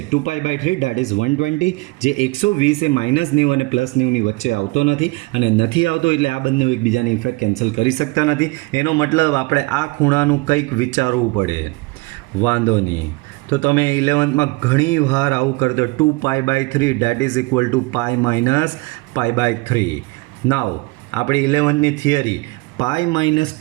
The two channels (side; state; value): left; quieter; 24.2 dB